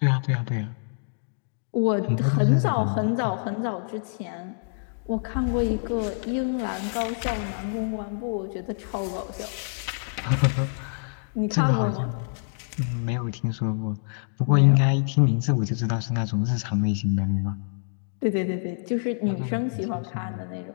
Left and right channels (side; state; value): right; silent; digital silence